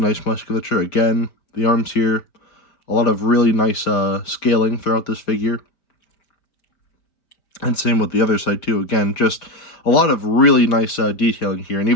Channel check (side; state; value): right; late; 5.0 ms